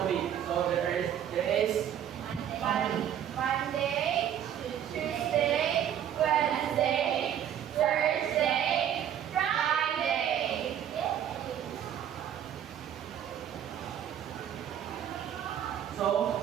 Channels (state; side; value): quieter; left; 9.9 dB